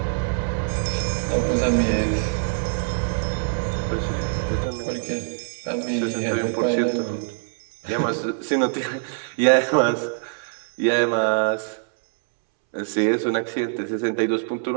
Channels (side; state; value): left; silent; 63 dB below the other